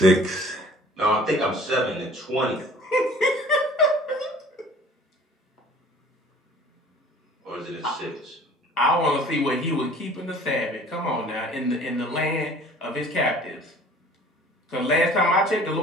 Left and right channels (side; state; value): both; normal; correlation 0.50